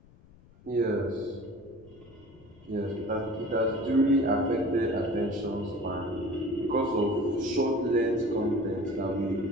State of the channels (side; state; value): left; noise; rumble, 25 dB below the sound